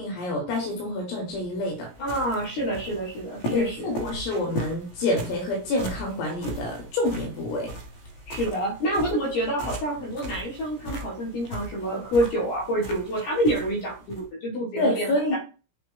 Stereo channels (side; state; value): right; late; 17 ms